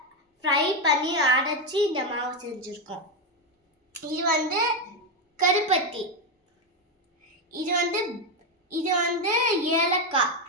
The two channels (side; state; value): both; normal; correlation 0.07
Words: ஃப்ரை பண்ணி அடைச்சி இந்த மாவு செஞ்சுருக்கோம். இது வந்து கருப்பட்டி, இது வந்து ஏலக்காய்,